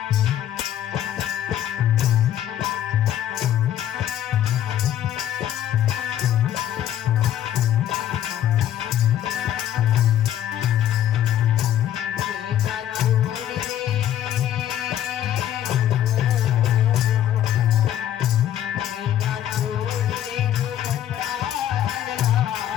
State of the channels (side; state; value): right; quieter; 11.3 dB